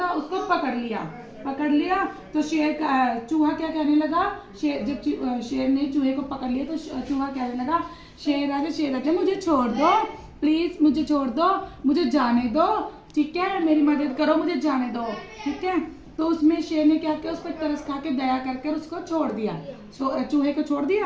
उसको पकड़ लिया। तो चूहा क्या कहने लगा, जब शेर ने चूहे को पकड़ लिया तो चूहा कहने लगा, शेर आजा मुझे छोड़ दो, प्लीज मुझे छोड़ दो, मुझे जाने दो, ठीक है, मेरी मदद करो, मुझे जाने दो, ठीक है। तो उसमें शेर ने क्या किया, उस पर तरस खा के दया करके उसको छोड़ दिया, चूहे को छोड़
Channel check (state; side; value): identical; both; correlation 1.00